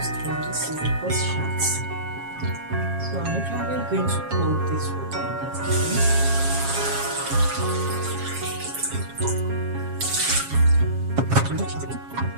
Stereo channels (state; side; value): late; left; 7.3 ms